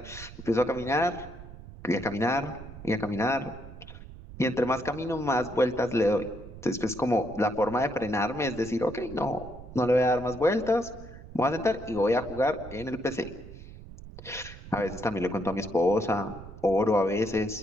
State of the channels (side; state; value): right; noise; rumble, 15 dB below the sound